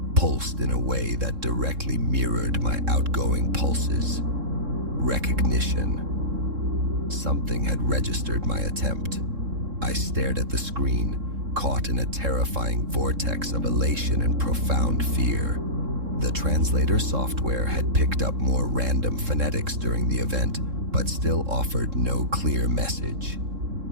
pulsed in a way that directly mirrored my outgoing pulses. Recognition. Something had registered my attempt. I stared at the screen, caught in a terrifying vortex of elation and profound fear. The translator software had picked up more random phonetics during the event, but still offered no clear message.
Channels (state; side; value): late; left; 3.7 ms